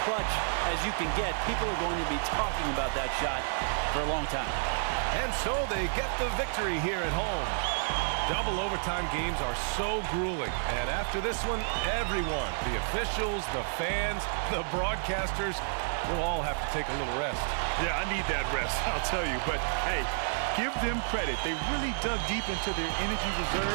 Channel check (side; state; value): left; silent; 56 dB below the other